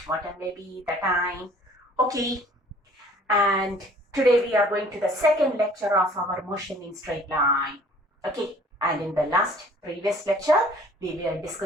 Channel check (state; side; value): normal; both; correlation 0.53